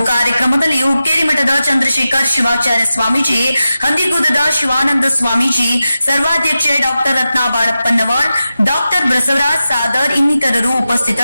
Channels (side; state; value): both; inverted; correlation -0.92